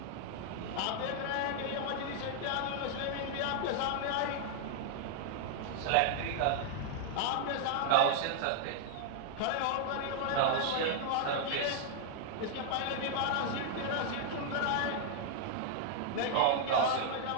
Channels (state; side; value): different; both; correlation 0.00